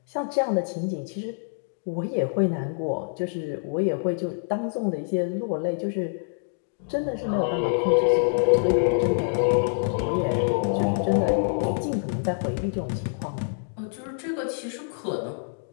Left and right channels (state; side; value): silent; right; digital silence